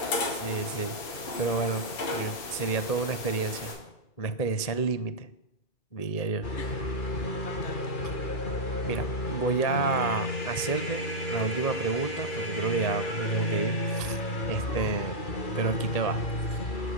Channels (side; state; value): right; late; 1.8 ms